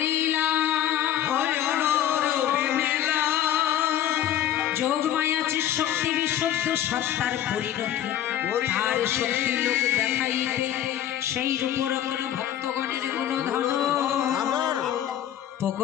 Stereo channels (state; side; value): quieter; right; 11.2 dB